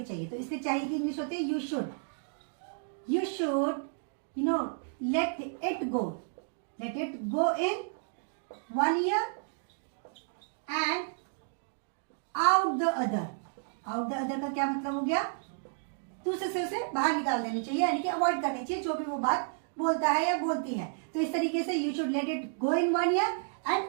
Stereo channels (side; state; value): left; silent; digital silence